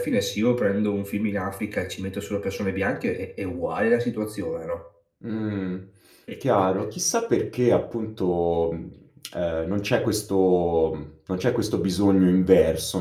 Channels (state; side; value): identical; both; correlation 1.00